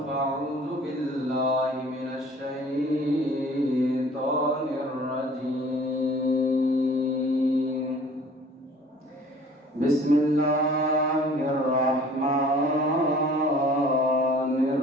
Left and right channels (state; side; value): normal; both; correlation 0.50